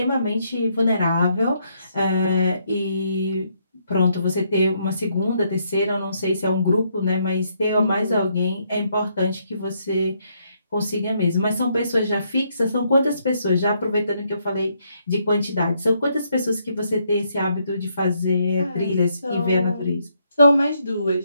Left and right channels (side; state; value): both; inverted; correlation -0.74